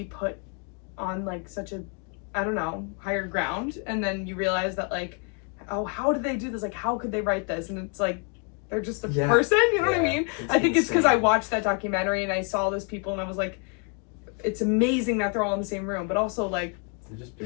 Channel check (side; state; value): right; quieter; 37.8 dB